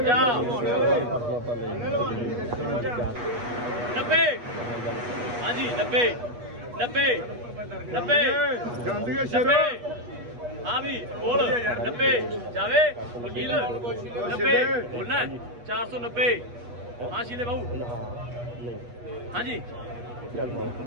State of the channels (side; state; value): left; late; 8.3 ms